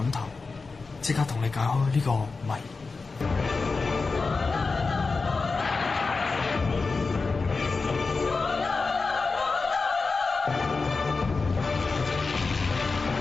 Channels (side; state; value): right; quieter; 4.2 dB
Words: 頭？即刻同你解開呢個謎。